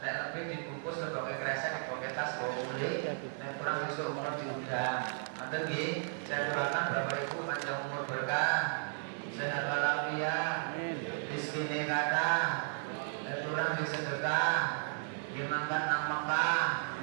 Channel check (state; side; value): silent; left; 55 dB below the other